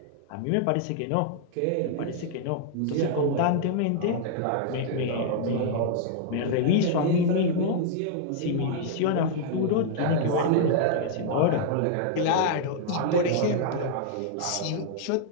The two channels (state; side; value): different; both; correlation -0.01